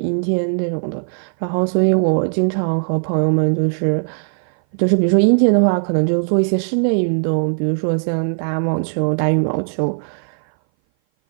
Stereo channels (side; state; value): left; silent; 58 dB below the other